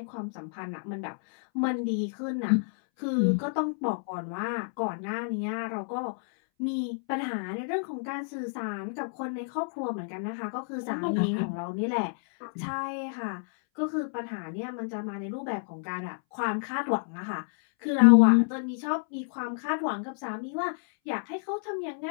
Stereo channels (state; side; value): silent; right; 58 dB below the other